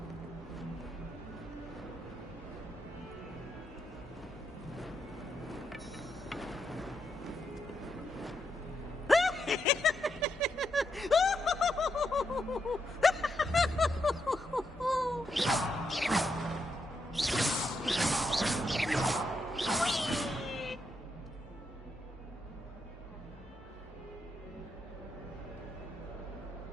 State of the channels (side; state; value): both; normal; correlation 0.81